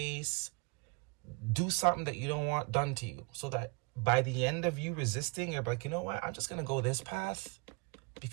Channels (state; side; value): quieter; left; 29.6 dB